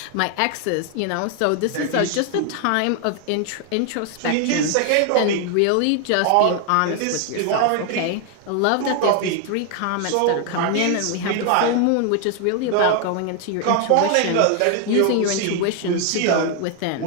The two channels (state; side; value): different; both; correlation 0.00